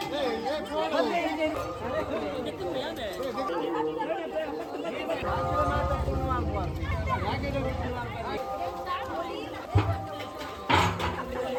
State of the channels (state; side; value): identical; both; correlation 1.00